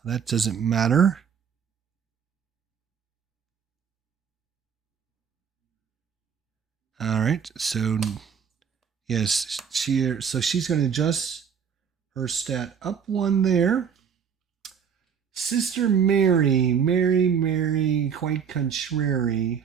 That doesn't matter. All right, so yes, she's going to adjust her stat up 1 there. Sister Mary, quite contrary.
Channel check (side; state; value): left; quieter; 7.2 dB